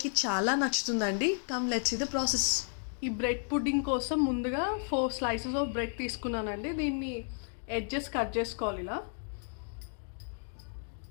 చాలా నచ్చుతుందండి. Come let's see the process. ఈ బ్రెడ్ పుడ్డింగ్ కోసం ముందుగా 4 స్లైసెస్ ఆఫ్ బ్రెడ్ తీసుకున్నానండి. దీన్ని ఎడ్జెస్ కట్ చేసుకోవాలి. ఇలా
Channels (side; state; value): right; silent; 56 dB below the other